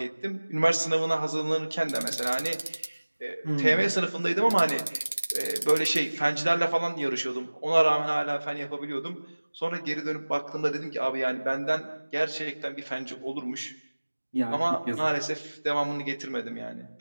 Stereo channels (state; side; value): inverted; both; correlation -1.00